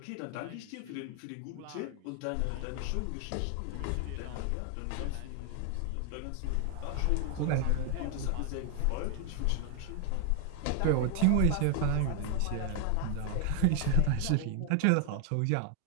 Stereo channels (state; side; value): different; both; correlation 0.00